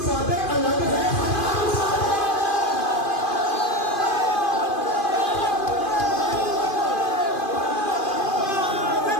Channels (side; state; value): right; late; 2.5 ms